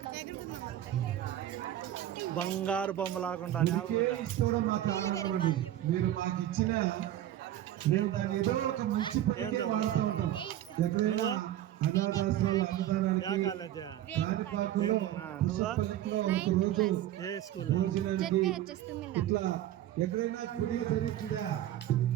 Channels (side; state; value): left; quieter; 12.7 dB